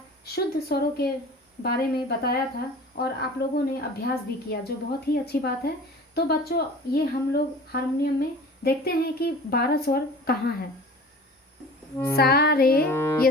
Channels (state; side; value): normal; both; correlation 0.41